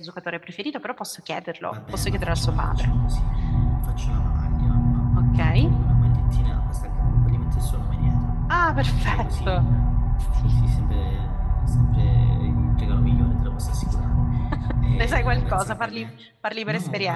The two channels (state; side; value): identical; both; correlation 1.00